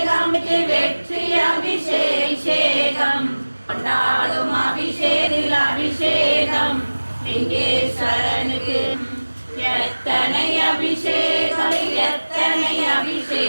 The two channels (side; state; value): both; inverted; correlation -1.00